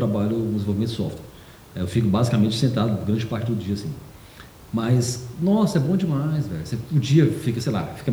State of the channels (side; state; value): both; identical; correlation 1.00